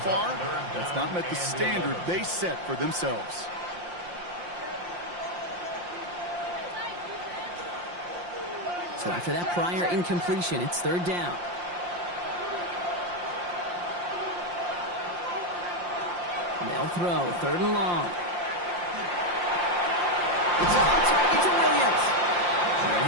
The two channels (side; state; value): left; late; 5.7 ms